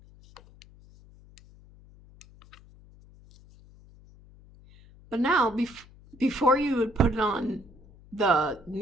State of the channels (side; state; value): left; noise; hum, 24 dB below the sound